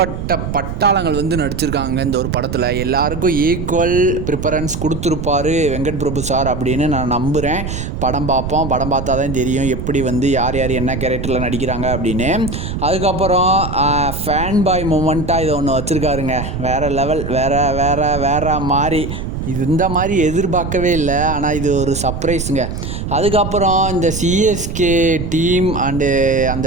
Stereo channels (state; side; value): noise; right; rumble, 5 dB below the sound